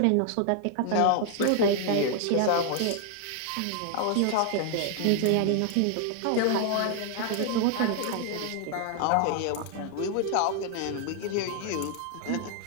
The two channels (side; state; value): both; different; correlation 0.00